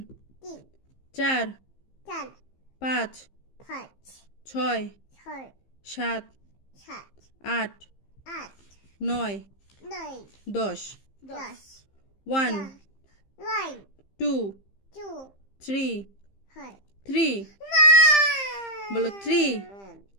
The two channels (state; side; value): late; right; 15 ms